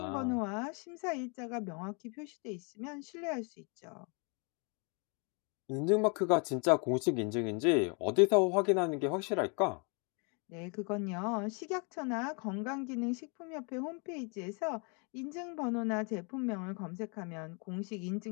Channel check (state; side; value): quieter; right; 35.0 dB